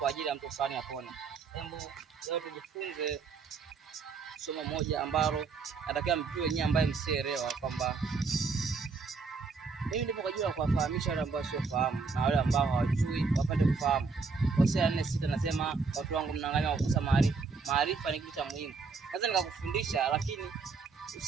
ajili ya mtu fulani apone? Hebu leo tujifunze somo moja ambalo natakiwa mjue nyinyi ambaye msielewa kwamba mimi ndipo kwa ajili ya kuwafahamisha wale ambao wasiofahamu na wale ambao hawajui wapate kufahamu. Hosea 4:6 nasema, watu wangu mnaangalia kukosa maarifa. Maarifa ni kitu cha muhimu. Naweza nikakufundisha lakini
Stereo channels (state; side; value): quieter; left; 4.7 dB